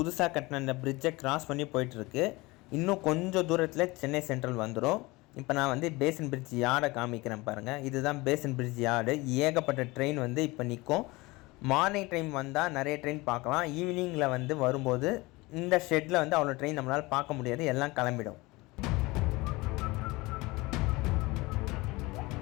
கட்டின அந்த பிரிட்ஜை க்ராஸ் பண்ணி போயிட்டுருக்கு. இன்னும் கொஞ்சம் தூரத்தில் சென்னை சென்ட்ரல் வந்துடும். இப்போ நான் வந்து பேசன் பிரிட்ஜ் யார்டை காமிக்கிறேன் பாருங்கள். இதுதான் பேசன் பிரிட்ஜ் யார்டு. ஏகப்பட்ட ட்ரெயின் வந்து இப்போ நிற்கும். மார்னிங் டைம் வந்தால் நிறைய ட்ரெயின் பார்க்கலாம். ஈவினிங்கில் வந்து வரும்போது இந்த ஷெட்டில் வந்து அவ்வளோ ட்ரெயின் நம்மளால் பார்க்க முடியாது, எல்லாம் கிளம்பிடும்.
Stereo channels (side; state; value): right; quieter; 22.6 dB